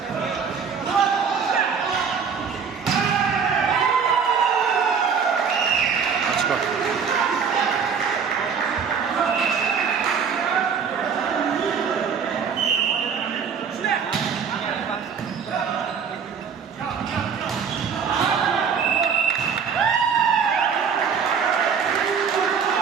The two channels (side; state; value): left; quieter; 6.4 dB